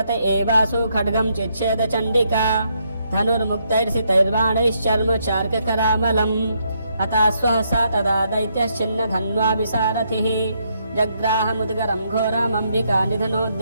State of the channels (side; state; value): both; inverted; correlation -0.76